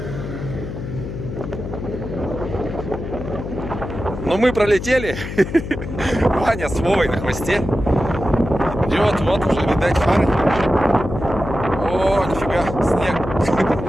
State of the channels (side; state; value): left; noise; hum, 7 dB below the sound